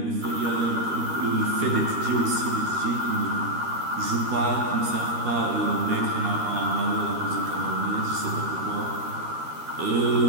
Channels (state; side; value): late; left; 13 ms